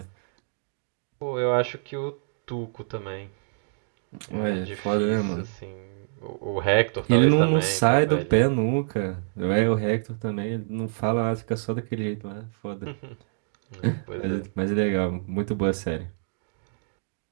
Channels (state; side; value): silent; left; digital silence